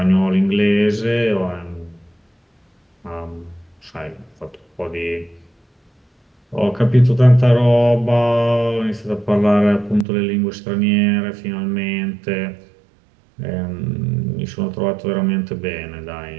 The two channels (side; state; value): left; drops out; at 10.1 s